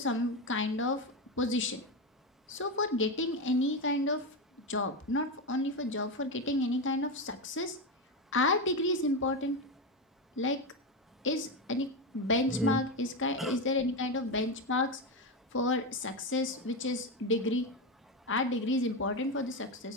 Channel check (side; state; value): both; normal; correlation 0.13